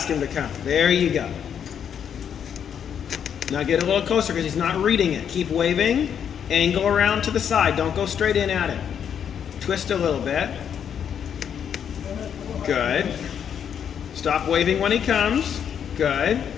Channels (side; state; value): right; quieter; 8.3 dB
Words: him to come? There you go. Now get a little closer because he's not reading it. Keep waving. Angle around to the side. Don't go straight in at him. Twist a little bit. Good. Stop waving when he comes. Good.